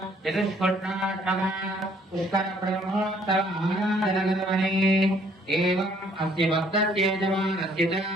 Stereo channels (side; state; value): both; normal; correlation 0.63